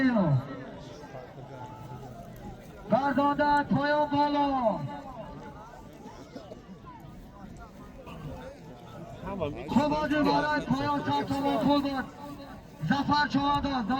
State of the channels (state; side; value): identical; both; correlation 1.00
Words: گرداندن پایان بالا خوبادی برای پایان 100 تومان پول بود زفر چهادان